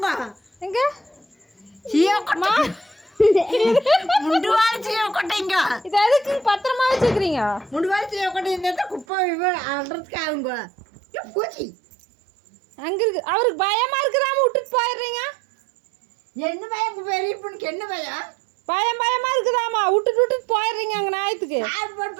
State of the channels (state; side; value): drops out; left; at 9.1 s